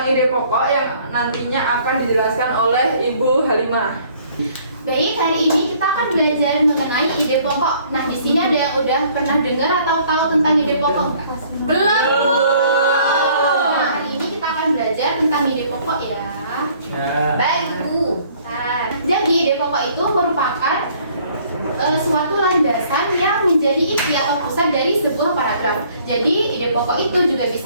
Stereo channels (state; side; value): inverted; both; correlation -0.59